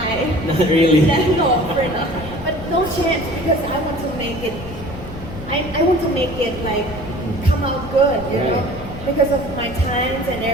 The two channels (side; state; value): left; noise; rumble, 12 dB below the sound